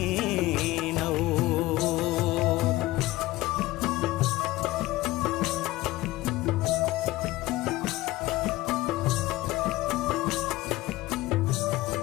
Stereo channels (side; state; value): right; quieter; 18.3 dB